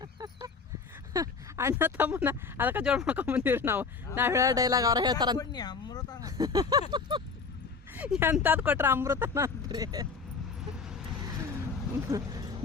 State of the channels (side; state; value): right; quieter; 5.0 dB